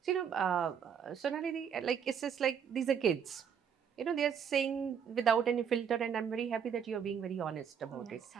So, Sonali, like, it's just like these are kids. They're saying without any filter, and I'm very happy that you're being very honest about it. Yes,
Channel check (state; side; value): quieter; left; 7.6 dB